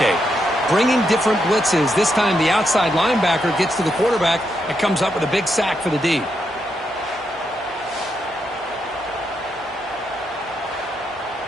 Bringing different blitzes. This time the outside linebacker gets to the quarterback and comes up with a big sack for the D.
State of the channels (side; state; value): both; normal; correlation 0.81